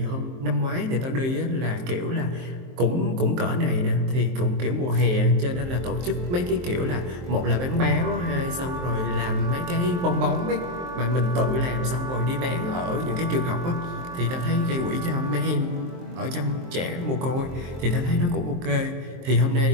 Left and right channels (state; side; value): late; left; 23 ms